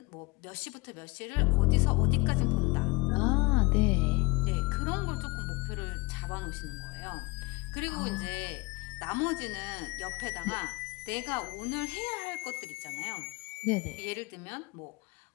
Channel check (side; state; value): right; quieter; 25.3 dB